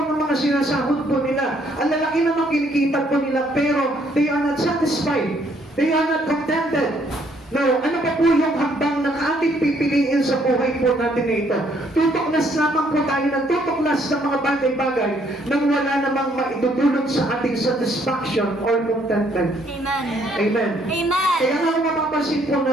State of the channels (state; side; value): normal; both; correlation 0.67